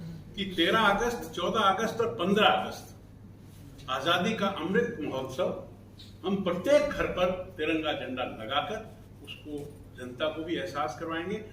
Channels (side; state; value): both; identical; correlation 1.00